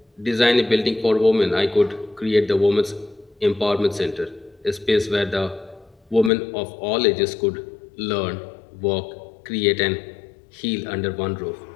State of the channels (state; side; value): drops out; right; at 6.3 s